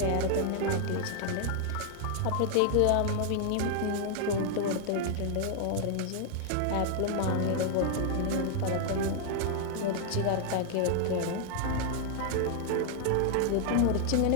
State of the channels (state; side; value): different; both; correlation 0.00